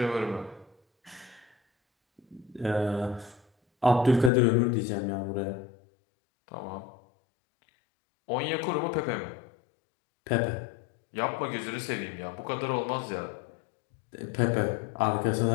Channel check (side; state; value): right; drops out; at 4.3 s